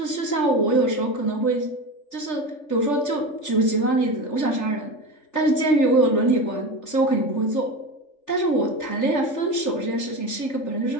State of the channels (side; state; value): right; late; 3.4 ms